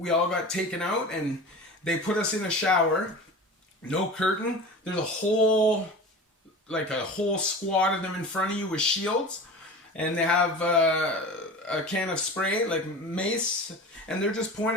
all got taken out, and they put us in a shower, no curtain. There's a whole squad of them in front of you with shields, and they have a can of spray, like mace, and they're just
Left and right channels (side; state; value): both; normal; correlation 0.34